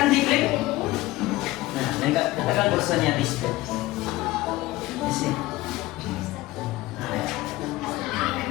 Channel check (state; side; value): quieter; right; 18.5 dB